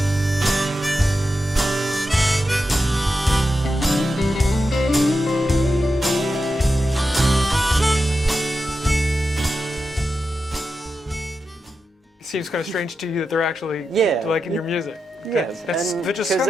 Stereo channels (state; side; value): normal; both; correlation 0.89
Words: It seems kind of strange to you that they're actually liking your music. Yes, That's just kind